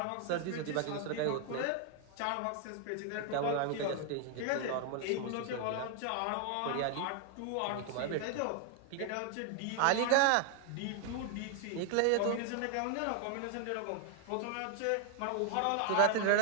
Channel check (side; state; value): both; different; correlation 0.00